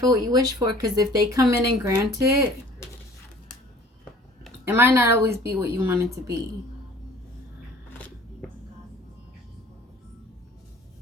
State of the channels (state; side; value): normal; both; correlation 0.49